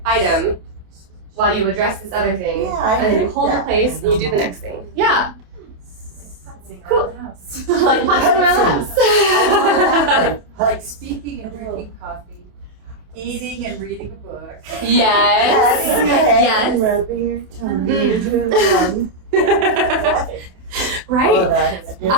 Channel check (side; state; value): left; late; 28 ms